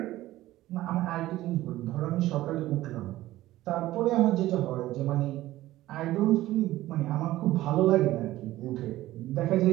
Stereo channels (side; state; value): left; quieter; 15.8 dB